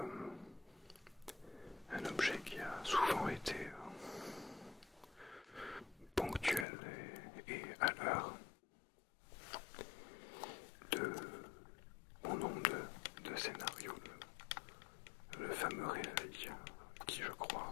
Un objet qui a souvent été ponctuel et à l'heure de mon nombre de scénarios, le fameux réveil qui, je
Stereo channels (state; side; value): drops out; right; at 6.7 s